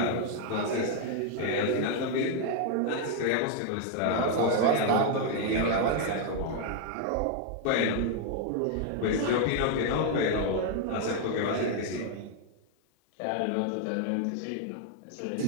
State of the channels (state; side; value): different; both; correlation 0.00